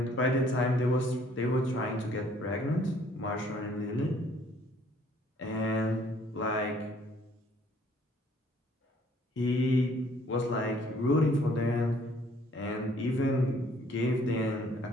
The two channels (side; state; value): both; normal; correlation 0.61